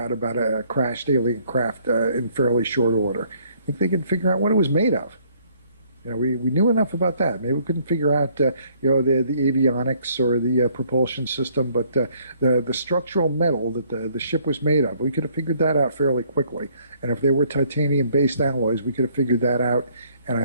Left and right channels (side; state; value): both; inverted; correlation -0.63